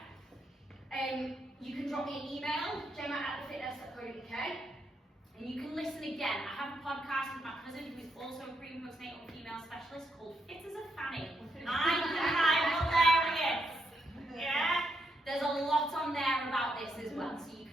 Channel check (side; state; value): both; normal; correlation 0.80